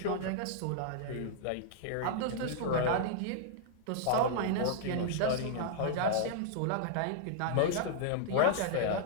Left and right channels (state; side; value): different; both; correlation -0.01